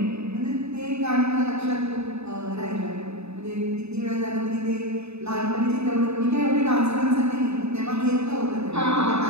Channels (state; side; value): late; left; 0.80 ms